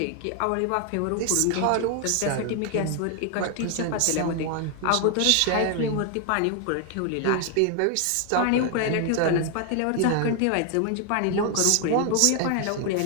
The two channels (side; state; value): both; different; correlation 0.00